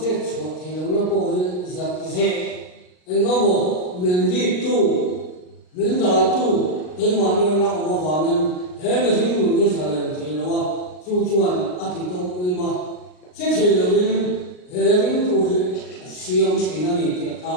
rồi thì nó có giật dễ, anh nó một mình đi tu, mình đã tu, thế mà như nó mà vào mình, thế mà chỉ dùng cái sao này thì nó chu chuan, thì trong cái mà, chết thì là mình, thế mình tu thì siêu chỉ nó này thì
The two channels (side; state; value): right; late; 39 ms